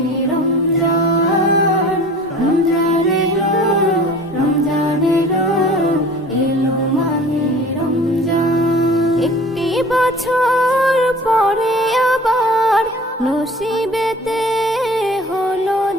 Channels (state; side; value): normal; both; correlation 0.44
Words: রমজান। রমজান এলো, রমজান এলো, এলো মাহে রমজান। একটি বছর পরে আবার নসিবেতে হলো